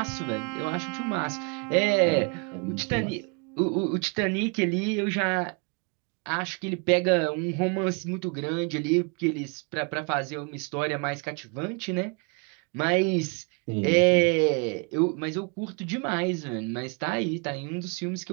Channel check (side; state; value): left; quieter; 34.3 dB